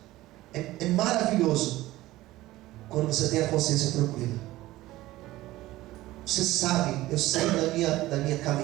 É maravilhoso quando você tem a consciência tranquila. Você sabe, eu sei da minha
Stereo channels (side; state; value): left; quieter; 17.0 dB